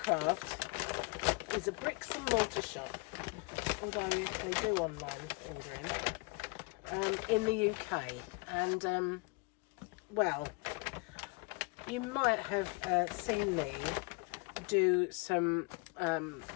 is a bricks and mortar shop, although they do online ordering, in the UK. And, well, you might have seen me do some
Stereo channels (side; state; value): right; quieter; 28.6 dB